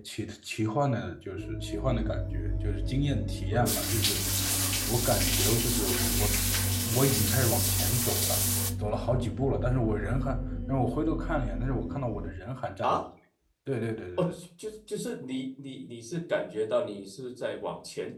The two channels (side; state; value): both; identical; correlation 1.00